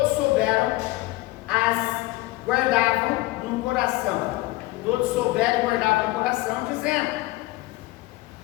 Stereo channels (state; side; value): quieter; right; 19.2 dB